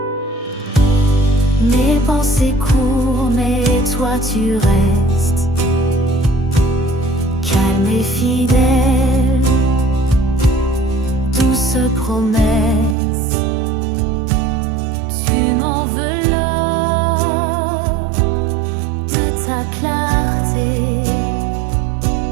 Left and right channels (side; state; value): left; drops out; at 13.0 s